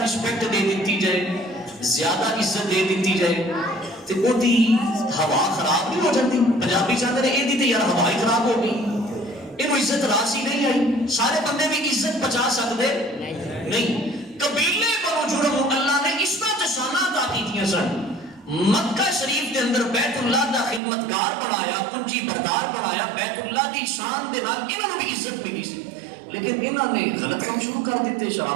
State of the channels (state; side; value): drops out; left; at 20.8 s